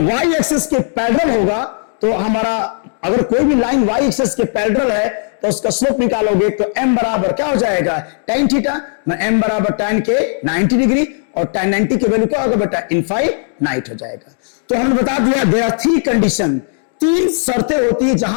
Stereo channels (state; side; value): silent; right; digital silence